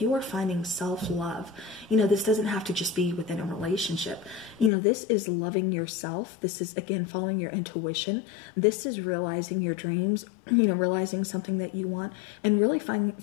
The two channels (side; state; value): right; drops out; at 4.7 s